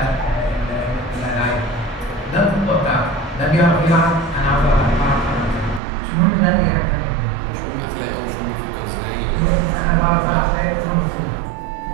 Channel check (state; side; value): drops out; left; at 5.8 s